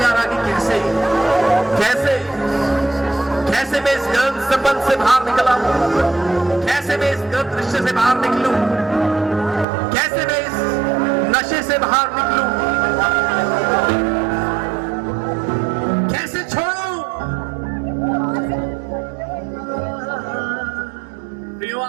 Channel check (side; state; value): left; drops out; at 9.7 s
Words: आ रहा कि कैसे कैसे कैसे मैं इस गलत संबंध से बाहर निकला, कैसे मैं इस गलत रिश्ते से बाहर निकलूं, कैसे मैं इस नशे से बाहर निकलूं, कैसे छोड़ूं।